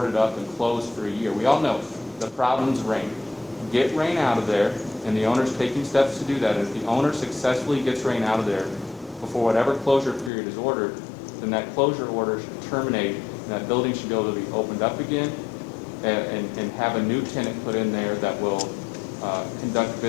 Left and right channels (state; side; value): drops out; right; at 10.3 s